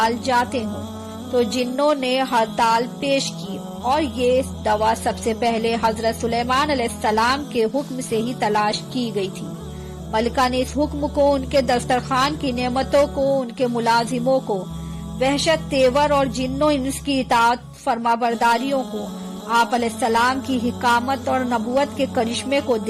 جاتے ہوں، تو جنوں نے ہڑتال پیش کی اور یہ دوا سب سے پہلے حضرت سلیمان علیہ السلام کے حکم سے ہی تلاش کی گئی تھی۔ ملکہ نے اس حکم کو، ان کے دسترخوان کی نعمتوں کو، ان کے ملازموں کو، وحشت تیور اور جنوں اس کی اطاعت فرما برداریوں کو، آپ علیہ السلام کی حکامت اور نبوت کے کرشمے کو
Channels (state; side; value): identical; both; correlation 1.00